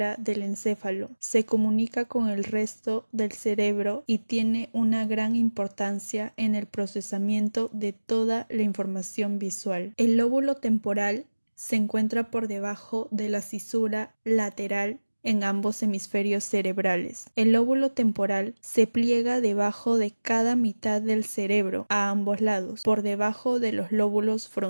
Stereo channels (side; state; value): both; inverted; correlation -1.00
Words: del encéfalo. Se comunica con el resto del cerebro y tiene una gran importancia en el procesamiento de toda la información visual. El lóbulo temporal se encuentra por debajo de la cisura lateral en ambos hemisferios cerebrales. El lóbulo temporal se pliega debajo de cada mitad del cerebro a ambos lados, por debajo de los lóbulos